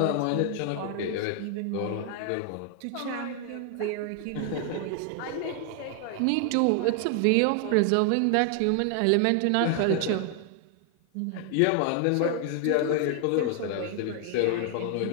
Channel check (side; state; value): both; different; correlation 0.00